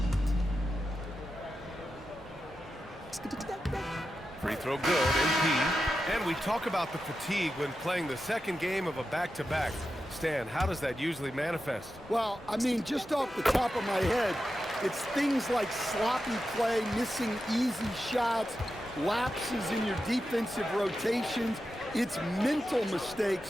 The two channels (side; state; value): both; normal; correlation 0.90